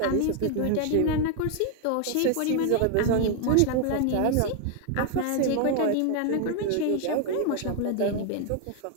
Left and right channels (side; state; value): both; different; correlation 0.00